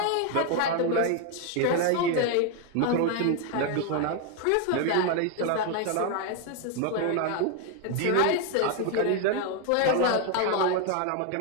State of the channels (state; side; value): different; both; correlation 0.01